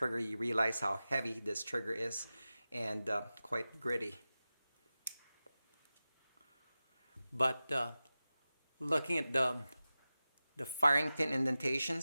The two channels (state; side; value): inverted; both; correlation -0.96